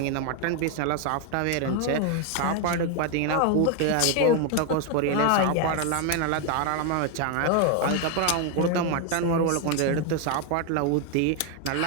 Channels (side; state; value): both; different; correlation 0.01